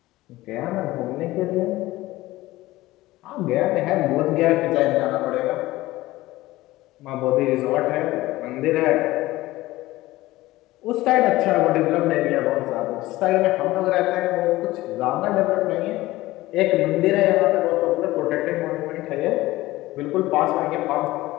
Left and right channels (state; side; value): quieter; right; 17.8 dB